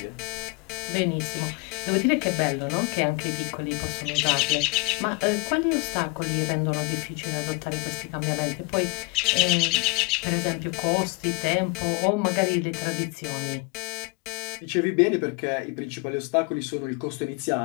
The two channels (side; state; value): right; quieter; 27.5 dB